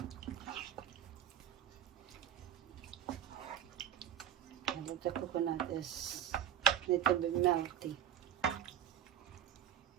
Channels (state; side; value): quieter; left; 10.2 dB